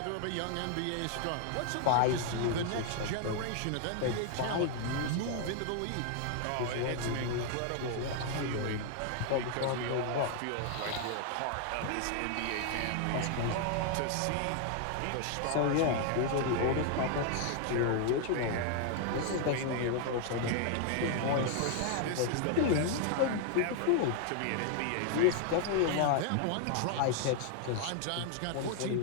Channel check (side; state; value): both; different; correlation 0.00